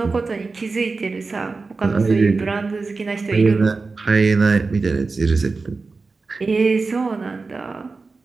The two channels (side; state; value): left; quieter; 4.0 dB